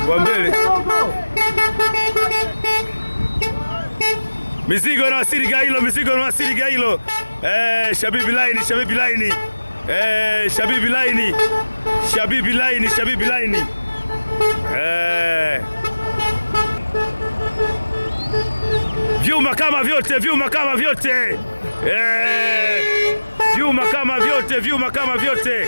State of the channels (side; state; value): both; inverted; correlation -1.00